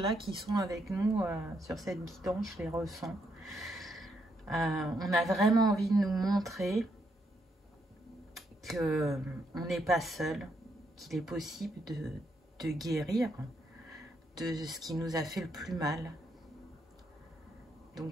qui sont avec nous sur cette guidance, je les ressens. On a vraiment envie de nous montrer qu'on n'est pas seul, qu'il est possible de guérir de ce qui nous a fait le plus mal.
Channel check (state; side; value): normal; both; correlation 0.77